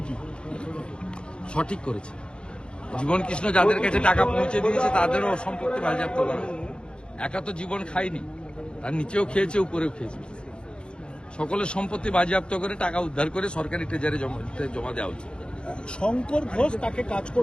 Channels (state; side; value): late; right; 0.053 ms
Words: সঠিক করেছে। জীবন কৃষ্ণ যাদের কাছে টাকা পৌঁছে দিয়েছে তাদেরও সম্পত্তি বাজেয়াপ্ত করা। একা তো জীবন খায়নি, তার নিচেও খেয়েছে, উপরেও খেয়েছে। সকলের সম্পত্তি বাজেয়াপ্ত করে টাকা উদ্ধার করে সরকারি ট্রেজারে জমা দেওয়া উচিত। শঙ্কর ঘোষ তাকে কাজ